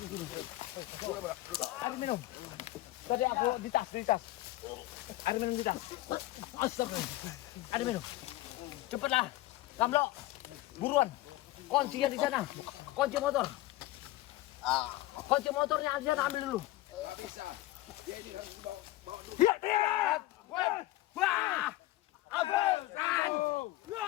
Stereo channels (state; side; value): quieter; right; 17.0 dB